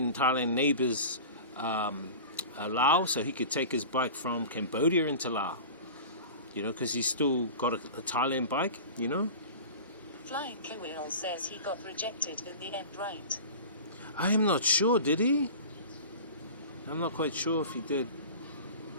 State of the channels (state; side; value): inverted; both; correlation -0.36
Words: Thailand neighbors Laos, so he could take his bike from Cambodia into Laos, you know, because he's still got a Thailand bike, you know. Flying Kewell says he got rejected in the end, right? I am not sure, did he? I'm not quite sure if he did.